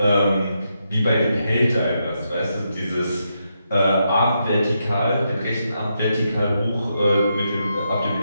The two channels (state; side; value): inverted; both; correlation -0.83